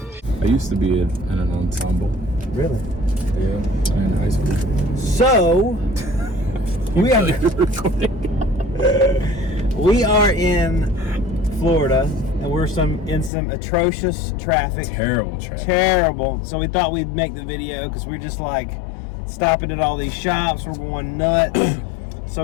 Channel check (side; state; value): right; drops out; at 13.3 s